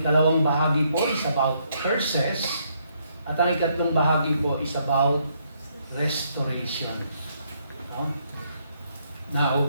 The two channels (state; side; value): inverted; both; correlation -0.72